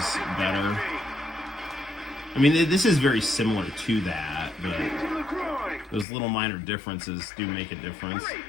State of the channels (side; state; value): right; drops out; at 6.1 s